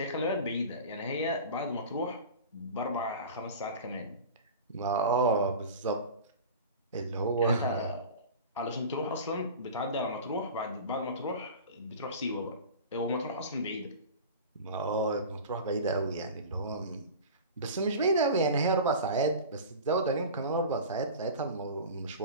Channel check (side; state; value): both; inverted; correlation -0.35